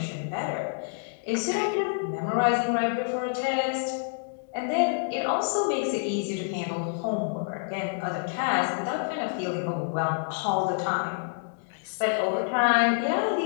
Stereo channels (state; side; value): silent; right; digital silence